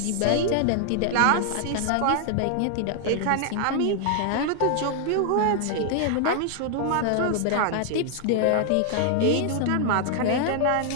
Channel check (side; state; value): both; different; correlation 0.00